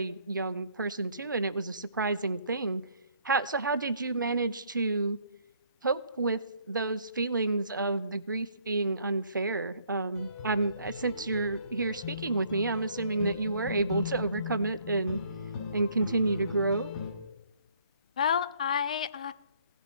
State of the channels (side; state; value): both; inverted; correlation -0.63